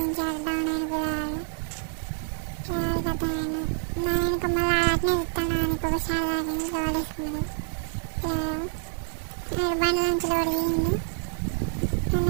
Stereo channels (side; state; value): left; silent; digital silence